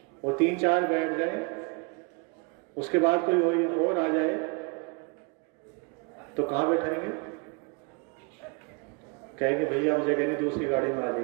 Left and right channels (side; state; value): left; quieter; 32.0 dB